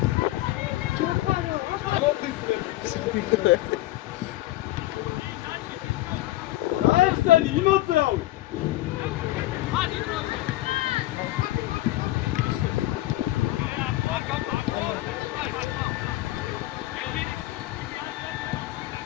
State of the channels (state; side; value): quieter; right; 16.6 dB